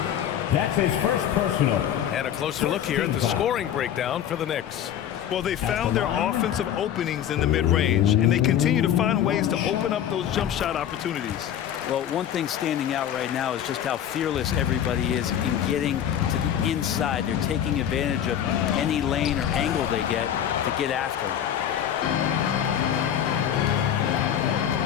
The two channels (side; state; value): right; quieter; 9.9 dB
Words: That's his first personal. And a closer look here at the scoring breakdown for the Knicks. Well, they found their offensive openings in the mid-range, and they continue to find ways to open up those jump shot opportunities. Well, one thing standing out right now is just how fearless everybody is in getting to the inside. They're taking advantage of any lane or angle they get to get after them.